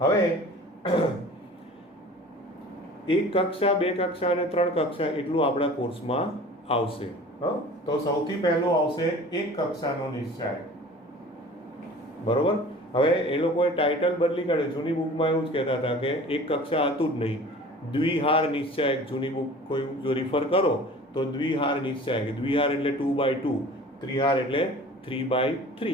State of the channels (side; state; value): both; normal; correlation 0.43